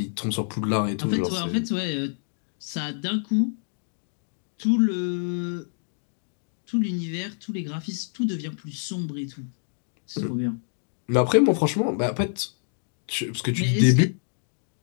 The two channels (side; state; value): right; silent; digital silence